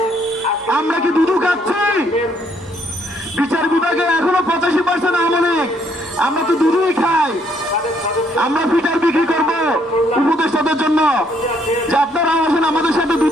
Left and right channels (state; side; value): normal; both; correlation 0.69